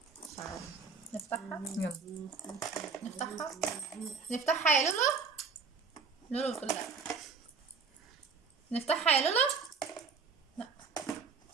مش عارف نفتحها. يلا. نفتحها نفتحها يا لولو. لولو بتقول لا. نفتحها يا لولو. لا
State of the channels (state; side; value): quieter; left; 5.1 dB